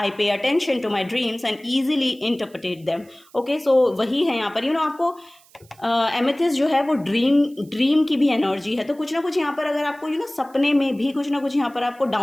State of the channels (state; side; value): noise; right; hiss, 28 dB below the sound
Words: pay attention to my dreams and easily interpret them. Okay, so वही है यहाँ पर आपको एमेथिस्ट जो है वो ड्रीम की भी एनर्जी है। तो कुछ ना कुछ यहाँ पर अगर आपको सपने में भी कुछ ना कुछ यहाँ पर आपको